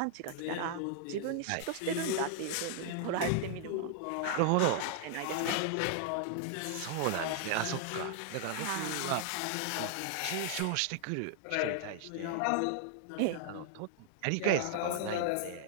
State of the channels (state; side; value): different; both; correlation 0.00